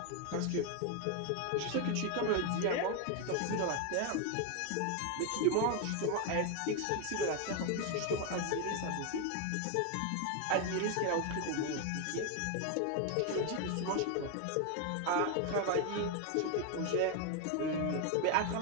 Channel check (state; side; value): different; both; correlation 0.01